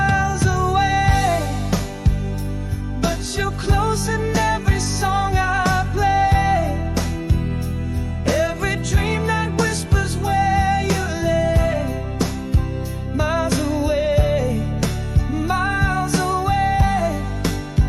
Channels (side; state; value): both; identical; correlation 1.00